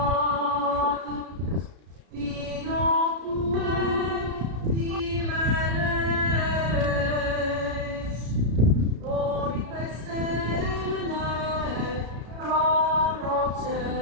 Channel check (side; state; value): left; late; 33 ms